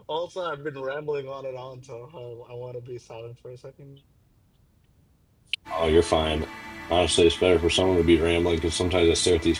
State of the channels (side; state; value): both; identical; correlation 1.00